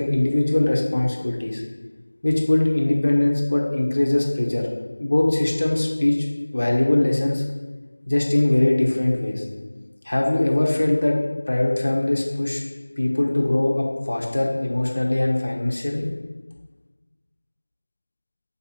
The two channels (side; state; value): both; inverted; correlation -1.00